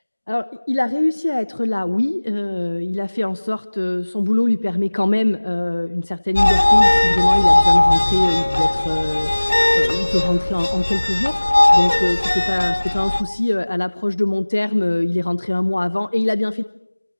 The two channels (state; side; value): inverted; both; correlation -1.00